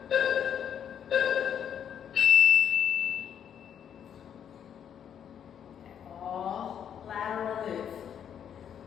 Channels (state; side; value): quieter; right; 8.8 dB